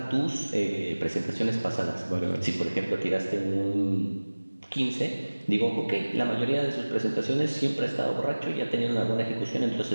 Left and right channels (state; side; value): inverted; both; correlation -1.00